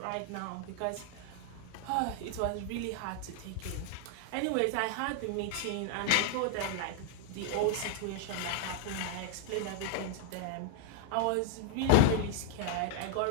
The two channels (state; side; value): different; both; correlation 0.00